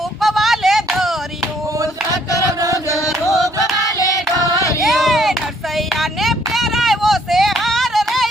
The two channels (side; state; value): both; normal; correlation 0.66